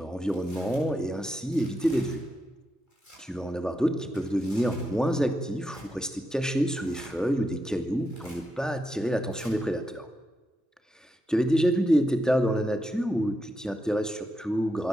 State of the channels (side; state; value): both; normal; correlation 0.85